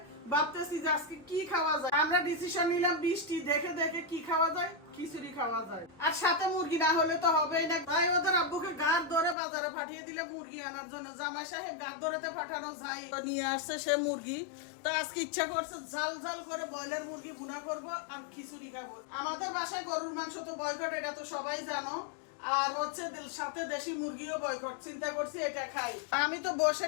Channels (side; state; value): right; drops out; at 9.3 s